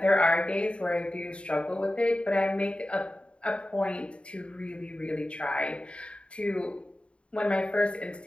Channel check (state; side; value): late; right; 0.058 ms